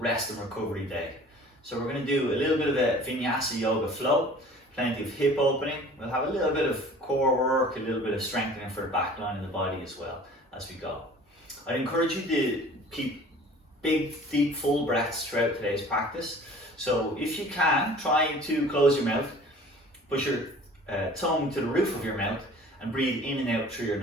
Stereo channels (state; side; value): normal; both; correlation 0.47